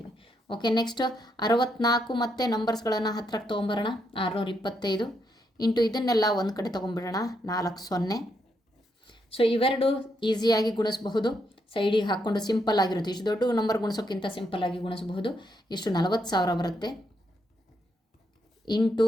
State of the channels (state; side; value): normal; both; correlation 0.78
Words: ಓಕೆ, ನೆಕ್ಸ್ಟ್ 64 ಮತ್ತು ನಂಬರ್ಸ್ಗಳನ್ನು ಹತ್ರಕ್ಕೆ ತೊಗೊಂಬರೋಣ. 625 ಇಂಟು ಇದನ್ನೆಲ್ಲ ಒಂದು ಕಡೆ ತೊಗೊಂಡ್ಬಿಡೋಣ. 4 0. ಸೊ ಇವೆರಡು ಈಸಿಯಾಗಿ ಗುಣಿಸಬಹುದು. ಸೈಡಿಗೆ ಹಾಕ್ಕೊಂಡು ಸಿಂಪಲ್ ಆಗಿರುತ್ತೆ. ಇಷ್ಟು ದೊಡ್ಡ ನಂಬರ್ ಗುಣಿಸೋಕ್ಕಿಂತ ಸಿಂಪಲ್ಲಾಗಿ ಗುಣಿಸಬಹುದು. ಇಷ್ಟು 40,000 ಬರುತ್ತೆ. ಇಂಟು